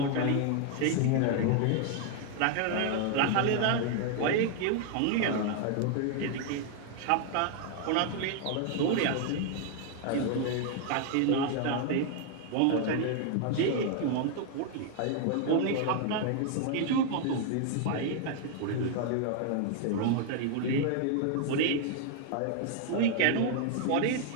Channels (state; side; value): different; both; correlation 0.00